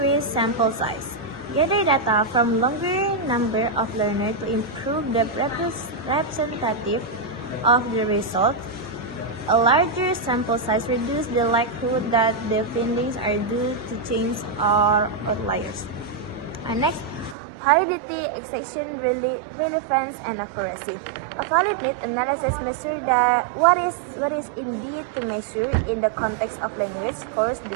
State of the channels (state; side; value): drops out; left; at 17.4 s